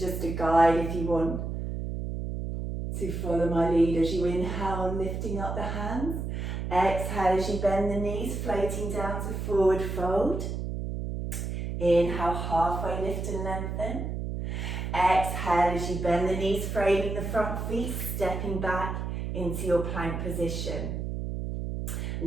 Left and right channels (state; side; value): noise; right; hum, 4 dB below the sound